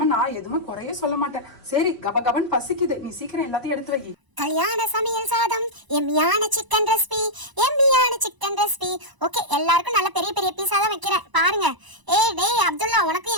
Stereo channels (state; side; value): late; left; 1.0 ms